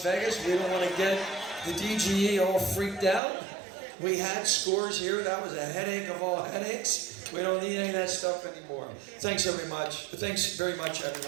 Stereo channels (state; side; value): drops out; left; at 3.2 s